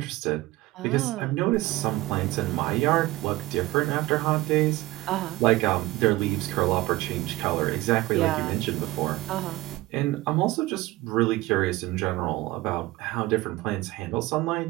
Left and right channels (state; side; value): quieter; left; 18.6 dB